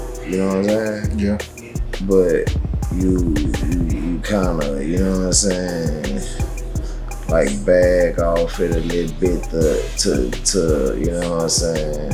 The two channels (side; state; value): both; identical; correlation 1.00